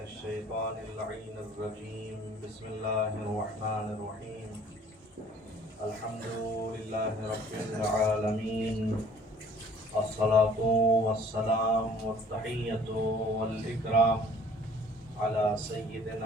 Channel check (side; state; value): both; normal; correlation 0.53